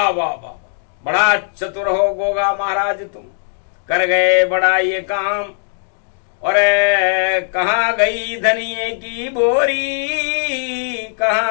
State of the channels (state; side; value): silent; right; digital silence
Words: वाह वाह, बड़ा चतुर हो गोगा महाराज तुम, कर गए बड़ा ये काम। और कहाँ गई धनिये की बोरी,